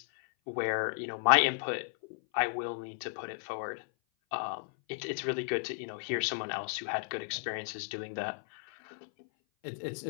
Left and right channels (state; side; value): silent; right; 55 dB below the other